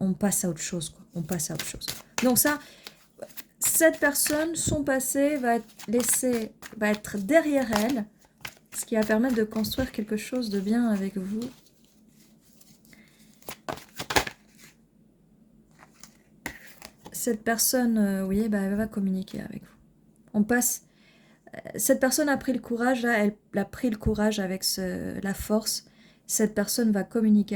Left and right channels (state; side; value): identical; both; correlation 1.00